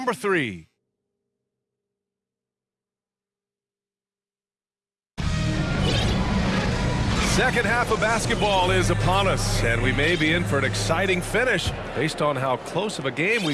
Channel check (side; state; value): both; identical; correlation 1.00